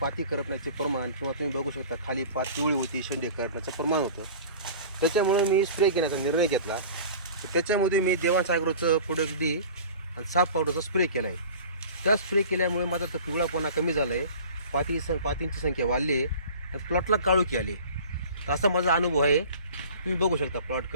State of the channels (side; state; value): both; inverted; correlation -0.41